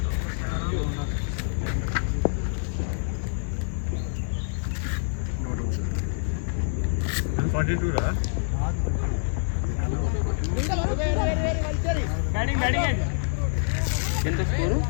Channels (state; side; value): silent; right; digital silence